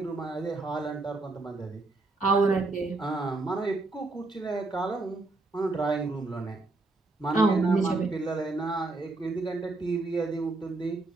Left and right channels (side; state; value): left; quieter; 3.3 dB